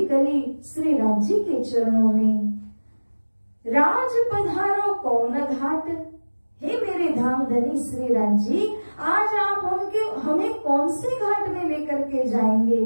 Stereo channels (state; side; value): inverted; both; correlation -1.00